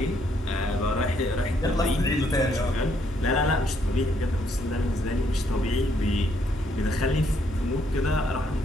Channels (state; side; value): normal; both; correlation 0.71